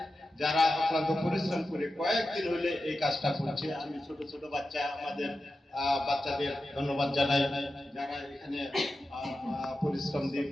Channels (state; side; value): normal; both; correlation 0.92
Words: যারা অক্লান্ত পরিশ্রম করে কয়েকদিন হইলে এই কাজটা করছে। আমি ছোট ছোট বাচ্চা, আমাদের বাচ্চাদের ধন্যবাদ জানাই, যারা এখানে পরিশ্রম দিয়ে